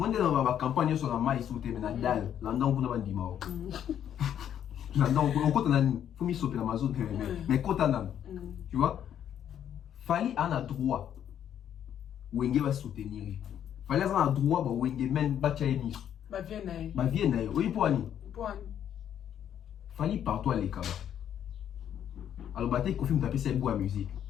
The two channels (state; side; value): quieter; right; 9.7 dB